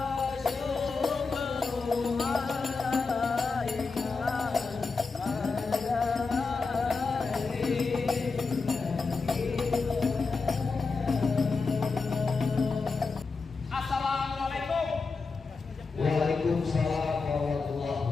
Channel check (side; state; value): right; quieter; 4.4 dB